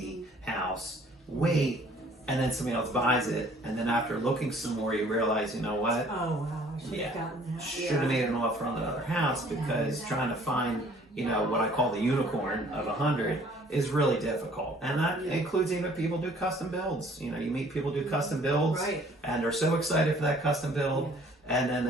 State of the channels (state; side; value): normal; both; correlation 0.56